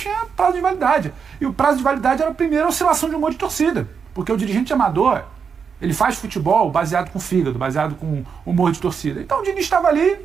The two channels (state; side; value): quieter; left; 6.3 dB